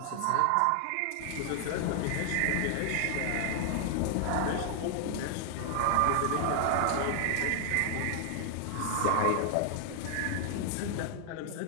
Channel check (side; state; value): both; different; correlation 0.00